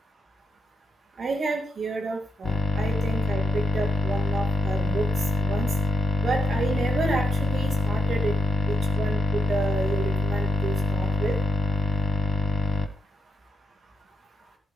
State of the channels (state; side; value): normal; both; correlation 0.83